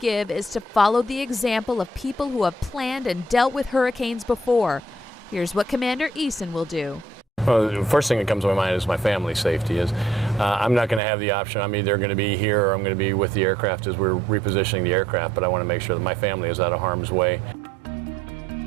is to follow the example of people who have planned and dealt with hurricanes before. Here's what Commander Eason will do. Well, the first thing that comes to my mind is my family's safety. I'm not going to have the option. I'm either going to be here or I'm going to be with the aircraft as we're repositioning the aircraft, but I want to make sure that my family is out of harm's way.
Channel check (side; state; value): left; drops out; at 11.0 s